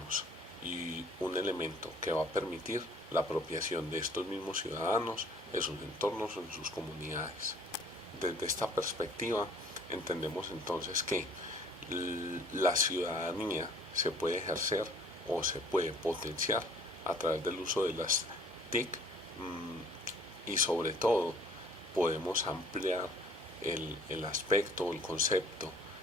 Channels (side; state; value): both; normal; correlation 0.54